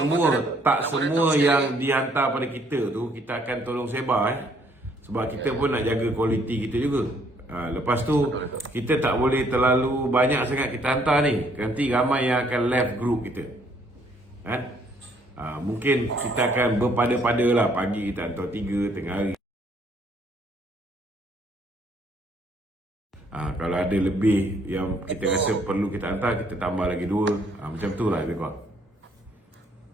yang dihantar pada kita tu kita akan tolong sebar, sebab kita pun nak jaga kualiti kita juga. Lepas tu kita tak boleh terlalu banyak sangat kita hantar ni, nanti ramai yang akan left group kita. Mungkin kita akan berpada-pada lah, pagi kita hantar 3, tengah hari. Kalau ada lebih yang kita rasa perlu kita hantar, kita tambah lagi 2. Macam tu lah lebih kurang.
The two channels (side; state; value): both; normal; correlation 0.66